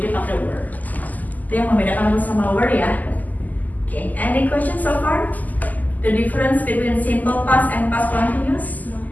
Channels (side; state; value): right; late; 0.081 ms